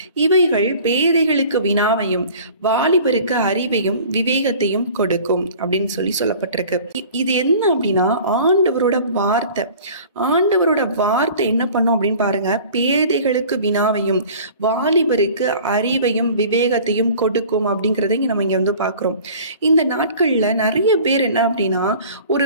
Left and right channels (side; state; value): both; inverted; correlation -0.45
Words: இவைகள் பேதைகளுக்கு வினாவையும் வாலிபருக்கு அறிவையும் விவேகத்தையும் கொடுக்கும் அப்படின்னு சொல்லப்பட்டிருக்கு. இது என்ன அப்படின்னா ஆண்டவரோட வார்த்தை. ஆண்டவரோட வார்த்தை என்ன பண்ணும் அப்படின்னு பாருங்க. பேதைகளுக்கு வினாவையும் வாலிபருக்கு அறிவையும் விவேகத்தையும் கொடுக்கும் அப்படிங்கிறத நம்ம இங்க வந்து பாக்குறோம். இந்த நாட்கள்ல நிறைய பேர் என்ன அப்படின்னா ஒரு